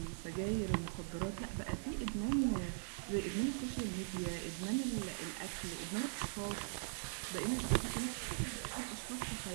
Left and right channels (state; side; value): silent; left; 50 dB below the other